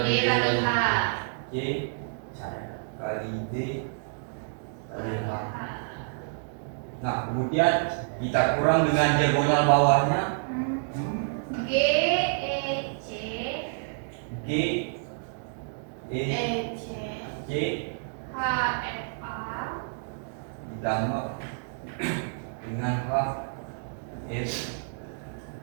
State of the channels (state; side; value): silent; left; digital silence